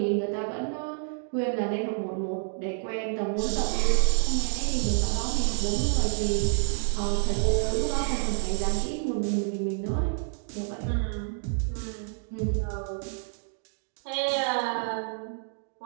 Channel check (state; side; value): silent; left; digital silence